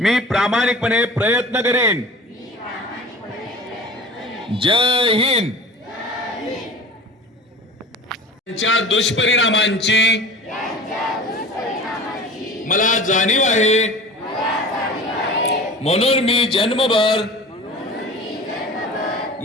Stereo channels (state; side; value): normal; both; correlation 0.38